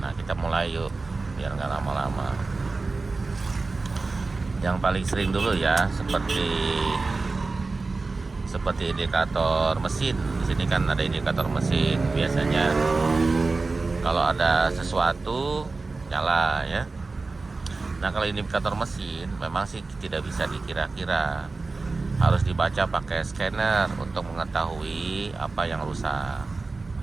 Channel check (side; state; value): left; quieter; 3.7 dB